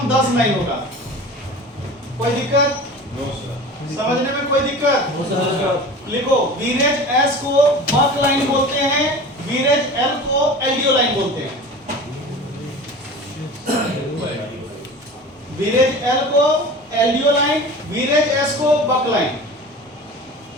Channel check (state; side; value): normal; both; correlation 0.37